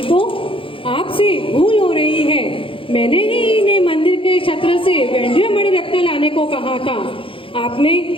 आपसे भूल हो रही है। मैंने ही इन्हें मंदिर के छत्र से वैंड्य मणि रत्न लाने को कहा था। आपने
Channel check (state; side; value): late; right; 0.26 ms